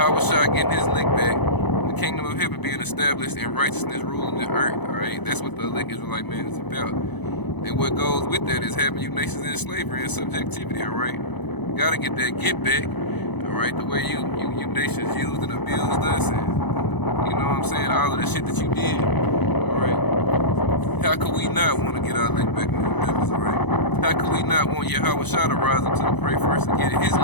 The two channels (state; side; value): late; right; 0.99 ms